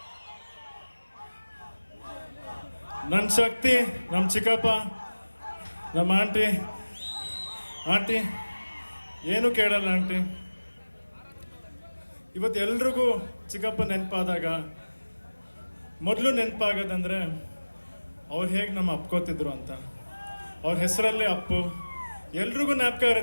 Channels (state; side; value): inverted; both; correlation -1.00